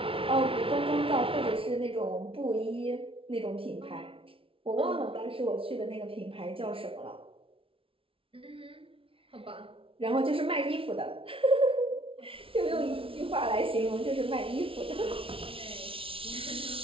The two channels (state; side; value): late; left; 0.26 ms